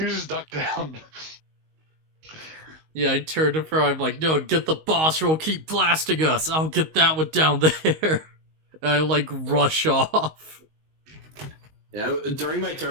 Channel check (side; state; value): left; late; 19 ms